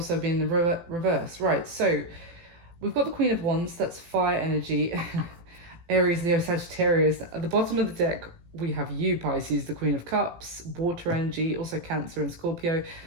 be in the reverse. Right, so we've got the Queen of Wands, that's fire energy. Aries, Leo, Sagittarius. At the bottom of the deck, we have you, Pisces, the Queen of Cups, water energy, also Cancer and Scorpio.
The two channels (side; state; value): left; late; 18 ms